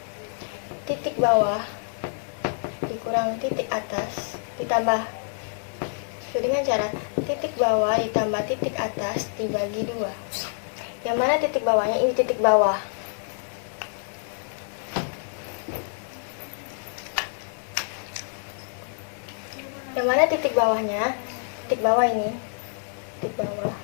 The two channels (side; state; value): right; silent; digital silence